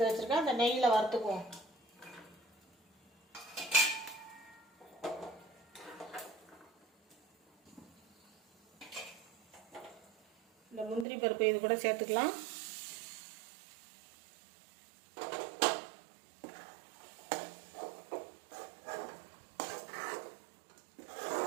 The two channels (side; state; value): left; drops out; at 11.1 s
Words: வச்சுருக்கேன். அந்த நெய்யில் வறுத்துக்குவோம். இந்த முந்திரி பருப்பு இது கூட சேர்த்துக்கலாம்.